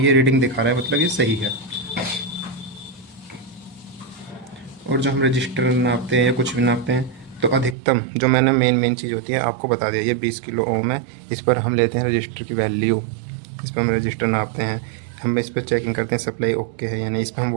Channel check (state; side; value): drops out; left; at 7.8 s